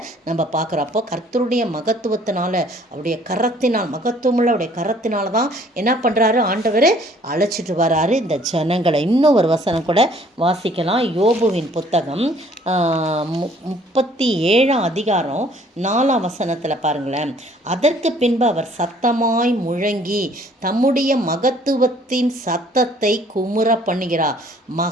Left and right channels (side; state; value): both; normal; correlation 0.58